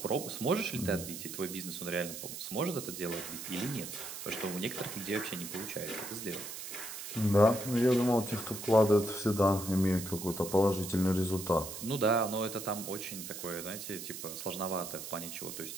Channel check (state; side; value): noise; right; hiss, 8 dB below the sound